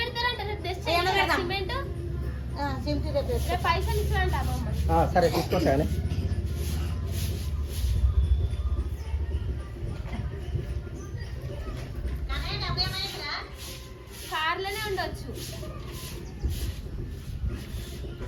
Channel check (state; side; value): identical; both; correlation 1.00